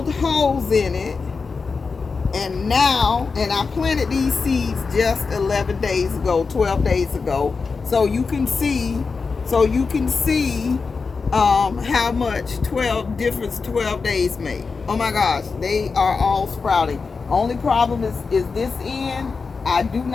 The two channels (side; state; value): right; quieter; 4.7 dB